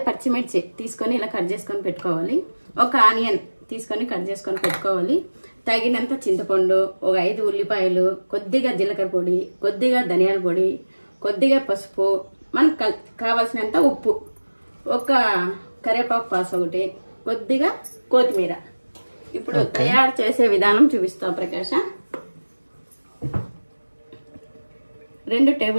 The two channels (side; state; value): both; inverted; correlation -1.00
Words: పచ్చిమిర్చి తీసుకొని ఇలా కట్ చేసుకొని పెట్టుకోవాలి. ఒక ఆనియన్ తీసుకొని కట్ చేసుకొని పెట్టుకోవాలి. తగినంత చింతపండు, ఒక 5 ఉల్లిపాయలు, కొద్దిగా జీలకర్ర పొడి, కొద్దిగా ధనియాల పొడి, కొద్దిగా పసుపు, మనకు కావాల్సినంత ఉప్పు, ఒక కరివేపాకు పాస్ ఒకటి, కొద్దిగా కొత్తిమీర. ఇప్పుడు తయారు చేసే విధానం చూపిస్తాం ప్రకాష్. 2